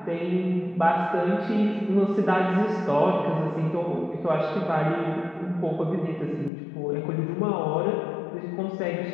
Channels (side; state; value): right; drops out; at 6.5 s